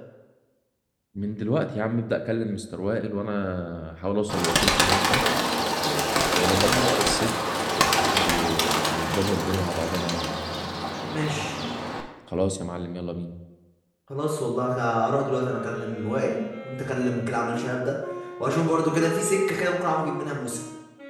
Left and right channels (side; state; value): both; identical; correlation 1.00